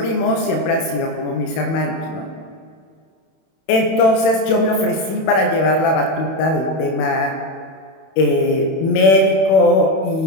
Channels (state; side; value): late; right; 31 ms